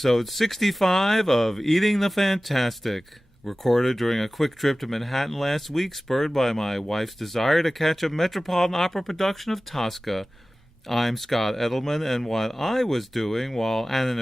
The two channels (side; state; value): both; normal; correlation 0.97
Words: 65 of Eating the Fantastic, recorded during a quick trip to Manhattan last week, spurred by my wife's desire to catch a Metropolitan Opera production of Tosca. I'm Scott Edelman, and what I was doing while